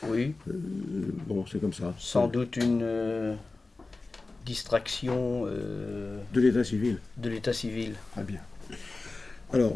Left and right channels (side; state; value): right; quieter; 3.5 dB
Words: Oui. Bon, c'est comme ça. Sans doute une distraction de l'état civil. De l'état civil. Ah bien. Alors,